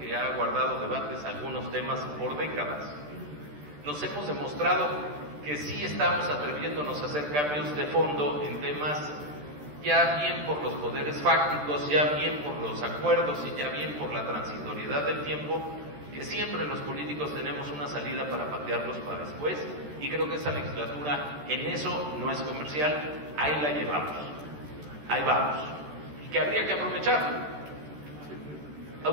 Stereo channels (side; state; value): left; late; 13 ms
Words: que ha guardado debates algunos temas por décadas. Nos hemos demostrado que sí estamos atreviéndonos a hacer cambios de fondo en temas ya bien por los poderes fácticos, ya bien por los acuerdos y ya bien por la transitoriedad del tiempo, que siempre los políticos tenemos una salida para patearlos para después, y creo que esa legislatura en eso no es comercial, ahí la llevamos, ahí vamos, y que habría que aprovechar.